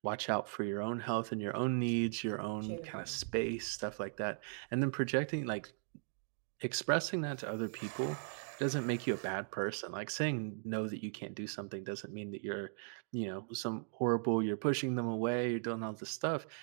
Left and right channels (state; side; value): silent; left; digital silence